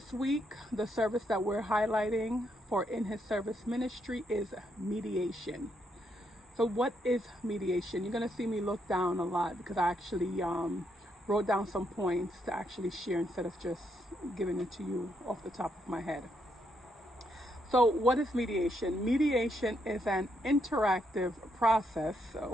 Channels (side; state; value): both; normal; correlation 0.77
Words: week, the service that we're highlighting for In His Service Ministry is mediation. So what is mediation? You're going to see me look down a lot because I actually wrote down some points to actually share instead of just giving it to you off the top of my head. So what is mediation? Mediation is an interactive process